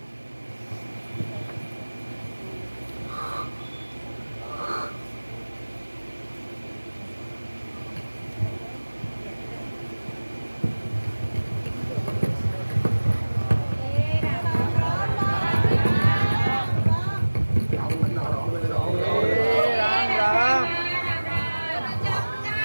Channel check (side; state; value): both; inverted; correlation -1.00